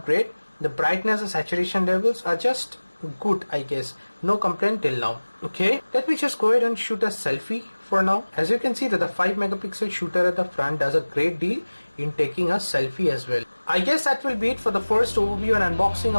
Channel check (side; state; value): both; inverted; correlation -1.00